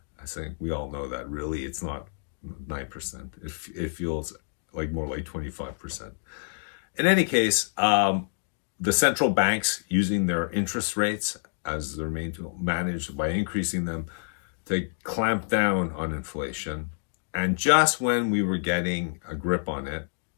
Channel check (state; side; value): silent; right; digital silence